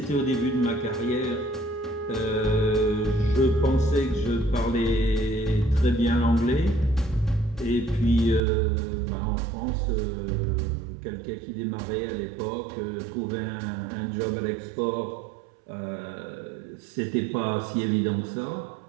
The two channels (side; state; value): left; drops out; at 8.4 s